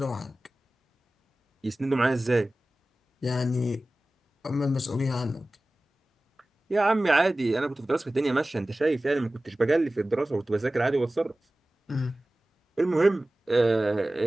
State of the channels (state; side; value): normal; both; correlation 0.97